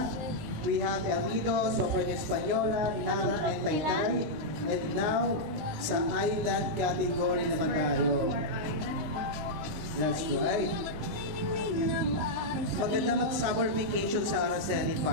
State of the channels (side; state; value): left; late; 20 ms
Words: We have El Nido, Soprano Española, Nara, and Taytay. And now, sa island category naman tayo. That's right. Maganda mag-summer vacation sa Araceli,